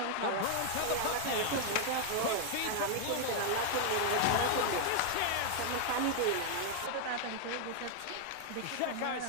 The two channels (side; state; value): both; different; correlation 0.00